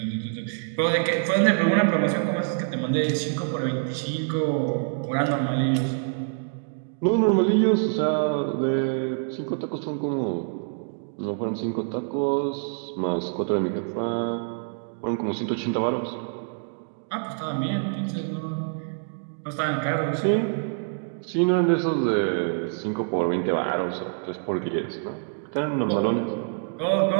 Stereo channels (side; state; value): left; silent; digital silence